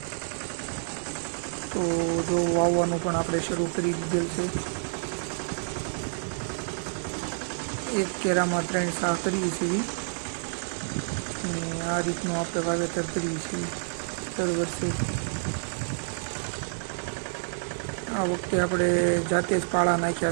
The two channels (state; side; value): silent; left; 59 dB below the other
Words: તો જો વાવવાનું પણ આપણે શરૂ કરી દીધેલ છે। એક કેરામાં 3 સાહ કરીએ છીએ અને આ રીતનું આપણે વાવેતર કરીએ છીએ દર વર્ષે। આ વખતે આપણે જાતે જ પાળા